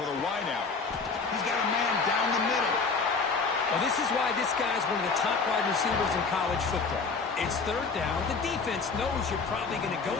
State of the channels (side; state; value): right; quieter; 4.6 dB